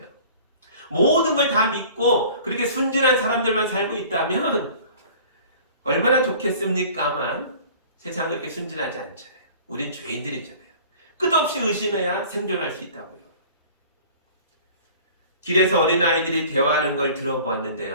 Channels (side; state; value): both; inverted; correlation -0.46